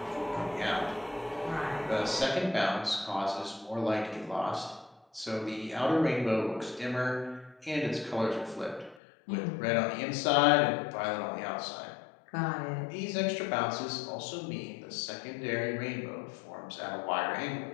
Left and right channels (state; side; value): drops out; right; at 9.0 s